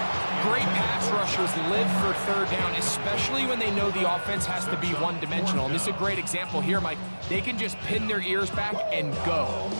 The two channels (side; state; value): both; inverted; correlation -1.00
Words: Great pass rushers live for 3rd down, especially when they know the offense has to be one-dimensional. And this is a great example here, Mike. They can just pin their ears back and go.